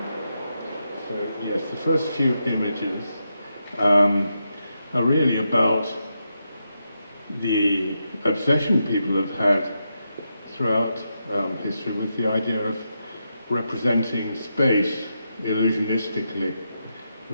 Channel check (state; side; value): inverted; both; correlation -0.85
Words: so yes, the first few images are really about the obsession people have had throughout history with the idea of representing space illusionistically,